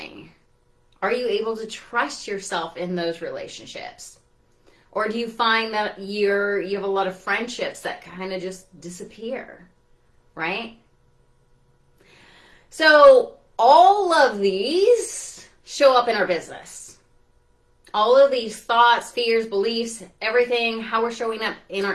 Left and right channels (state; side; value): identical; both; correlation 1.00